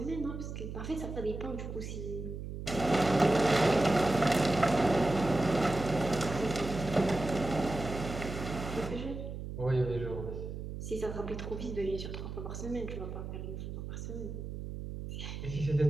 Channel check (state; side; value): noise; right; hum, 7 dB below the sound